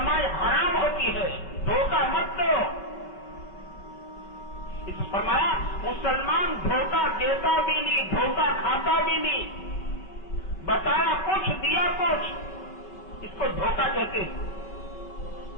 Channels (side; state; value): right; late; 5.3 ms